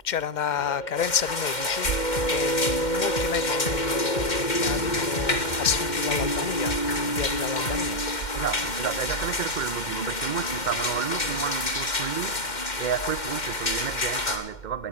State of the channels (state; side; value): late; right; 2.1 ms